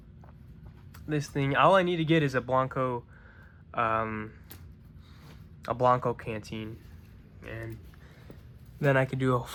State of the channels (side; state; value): both; identical; correlation 1.00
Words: all I need to get is a Blanco canteen, and then I can do a